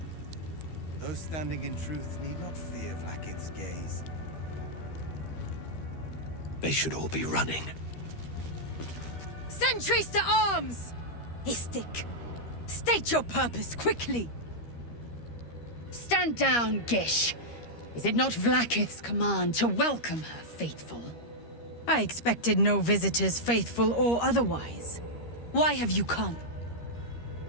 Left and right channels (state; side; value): late; right; 13 ms